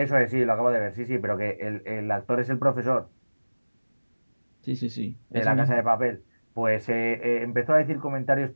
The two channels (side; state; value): both; inverted; correlation -1.00